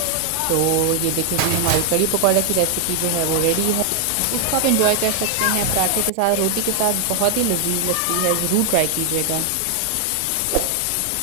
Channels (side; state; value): both; different; correlation 0.00